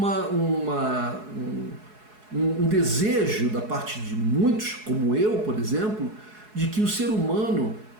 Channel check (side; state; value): left; late; 4.7 ms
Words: um desejo da parte de muitos, como eu, por exemplo, de que o ser humano,